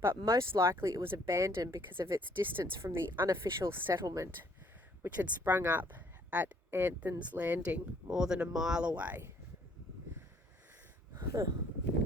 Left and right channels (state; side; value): normal; both; correlation 0.62